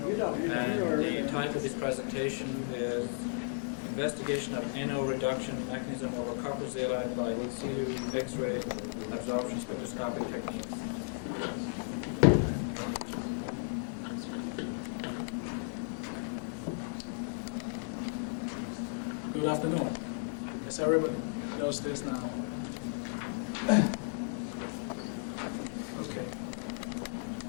And the title of his presentation is Investigation of NO Reduction Mechanism over Copper Zeolite by CU X-ray Absorption Spectroscopic Techniques. Good afternoon. Yes, everybody knows this now. Okay.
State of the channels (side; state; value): right; silent; 55 dB below the other